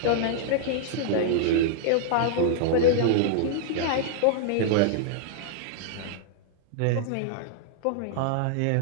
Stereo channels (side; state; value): both; different; correlation -0.01